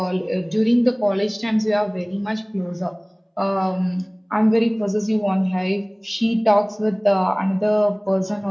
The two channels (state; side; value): identical; both; correlation 1.00